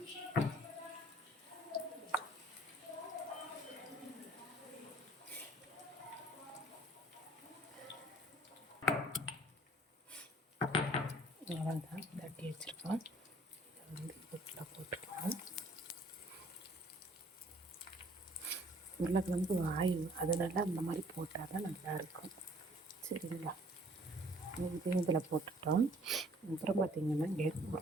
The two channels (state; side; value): normal; both; correlation 0.57